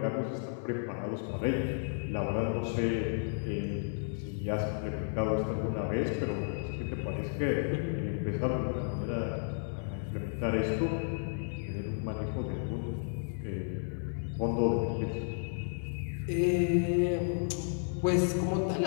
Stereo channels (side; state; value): right; silent; 56 dB below the other